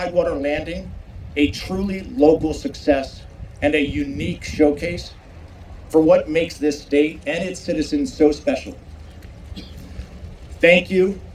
Landing a truly local success and a unique showcase for what makes this state and its citizens so special. Thank you,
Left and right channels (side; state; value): both; identical; correlation 1.00